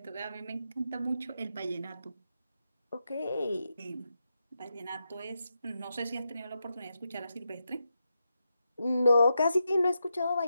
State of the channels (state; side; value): inverted; both; correlation -0.86